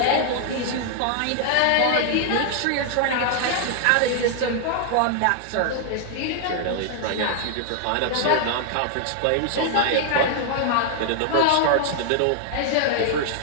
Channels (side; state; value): both; different; correlation 0.00